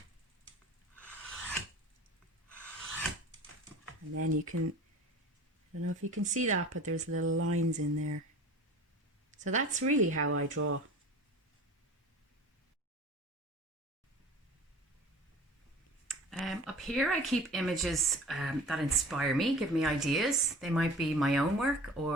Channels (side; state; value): both; normal; correlation 0.41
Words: And then you can, I don't know if you can see that, but there's little lines in there. So that's really how I draw. Up here I keep images that inspire me, give me ideas. They might be my own work